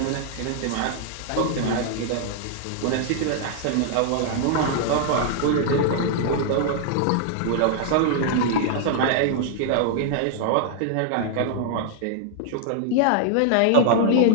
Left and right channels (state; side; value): different; both; correlation -0.01